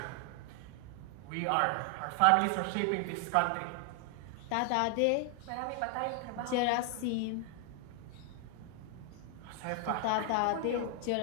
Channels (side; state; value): both; different; correlation 0.00